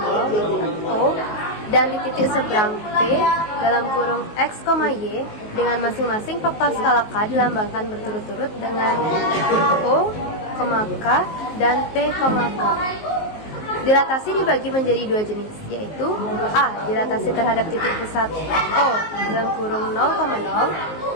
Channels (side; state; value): right; late; 19 ms